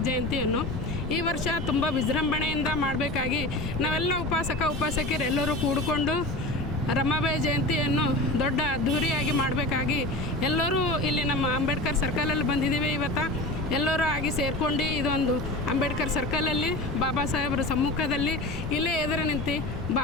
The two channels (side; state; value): left; noise; rumble, 7 dB below the sound